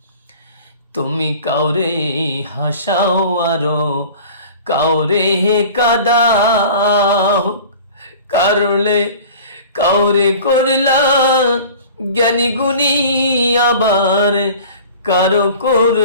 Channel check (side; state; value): both; inverted; correlation -0.42